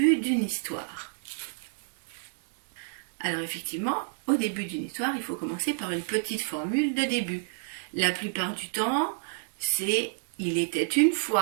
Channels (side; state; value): left; silent; 59 dB below the other